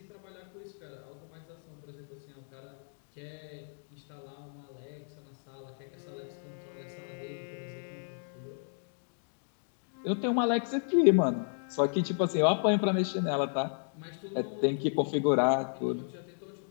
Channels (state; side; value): silent; right; digital silence